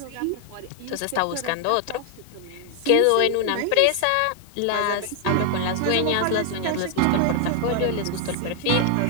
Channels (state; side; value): different; both; correlation 0.00